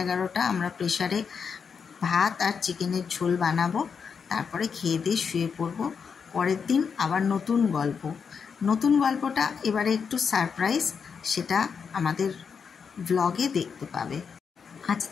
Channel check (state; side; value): quieter; right; 6.2 dB